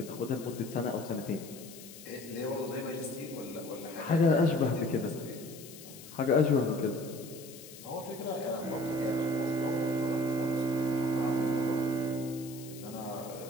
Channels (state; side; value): noise; left; hiss, 16 dB below the sound